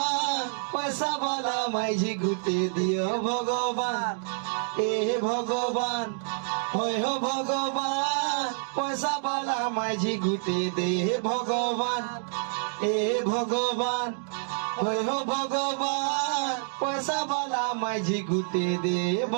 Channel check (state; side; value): silent; left; digital silence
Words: পয়সা বলা মাইঝি গুটে দিও ভগবান এ ভগবান ওই হো ভগবান পয়সা বলা মাইঝি গুটে দে ভগবান এ ভগবান ওই হো ভগবান পয়সা বলা মাইঝি গুটে দে